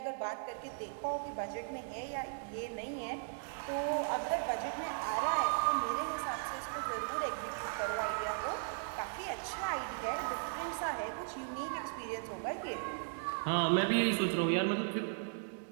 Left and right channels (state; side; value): silent; left; digital silence